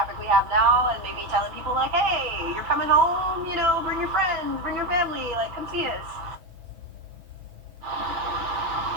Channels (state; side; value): late; left; 6.1 ms